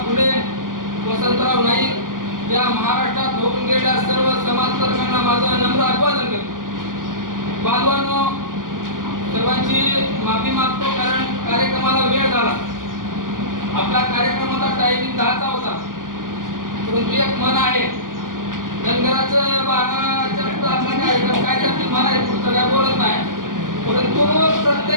फुले, वसंतराव नाईक या महाराष्ट्रात होऊन गेलेल्या सर्व समाजकर्त्यांना माझं नम्र अभिवादन करतो. बांधवांनो, सर्वांची माफी मागतो कारण कार्यक्रमाला वेळ झाला. आपला कार्यक्रमाचा टायमिंग 10चा होता, परंतु एक मन आहे धनगराचं 12च्या पुढे आपला कार्यक्रम काय त्यातील मन आहे पुढचं काय बोलत नाही. परंतु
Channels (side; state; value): left; late; 0.89 ms